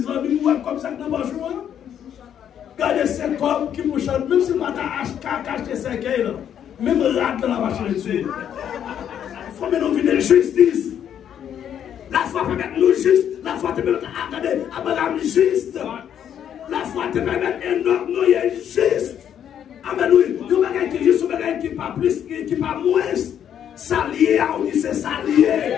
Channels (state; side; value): quieter; right; 9.4 dB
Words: comme ça, dans le jour. Regardez ces corps qui me chantent, même si je n'ai acheté 5 là, même rate dans la machine dessus. Il faut mettre nos vies de justice. La foi peut mettre nous juste, la foi te permet de juste. La foi te permet d'être nous juste. Amen, oui. Nous avons qui juste, qui pas plus, qui pas moins. S'allier, on dit c'est s'allier.